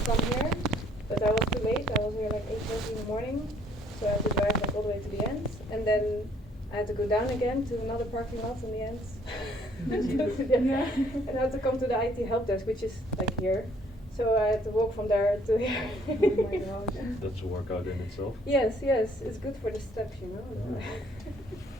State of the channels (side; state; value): both; normal; correlation 0.62